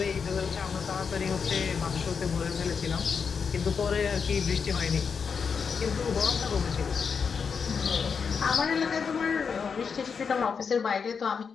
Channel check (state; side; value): quieter; right; 6.0 dB